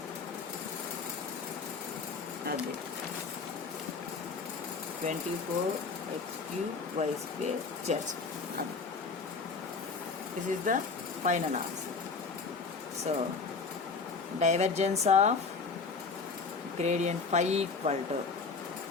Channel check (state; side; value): quieter; right; 4.7 dB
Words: అది 24x cube y square z. This is the final answer. So divergence of gradient 5 equal to